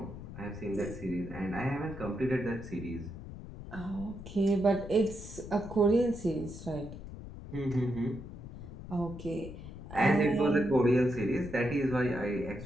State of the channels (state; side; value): noise; left; rumble, 12 dB below the sound